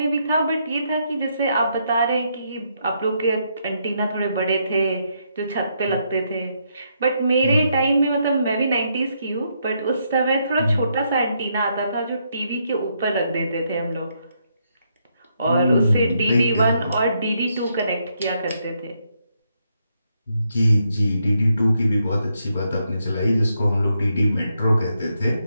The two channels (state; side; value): inverted; both; correlation -0.77